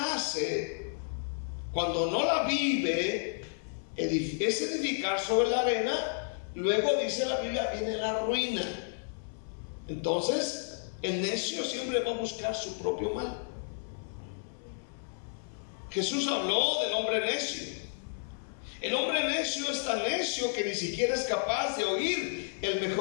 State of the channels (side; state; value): right; silent; 57 dB below the other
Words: hace, cuando no la vive, es edificar sobre la arena. Luego dice la Biblia, viene la ruina. Entonces, el necio siempre va a buscar su propio mal. Jesús habló del hombre necio. El hombre necio es tan necio que ni siquiera es capaz de oír el